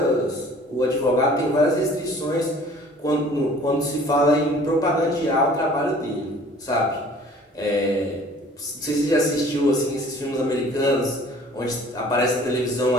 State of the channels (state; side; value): normal; both; correlation 0.51